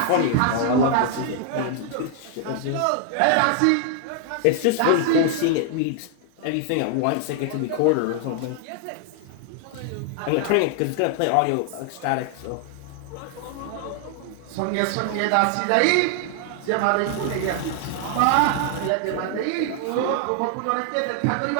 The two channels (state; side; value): different; both; correlation 0.00